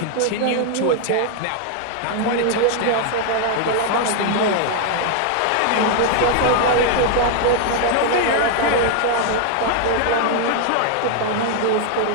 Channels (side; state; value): both; different; correlation 0.00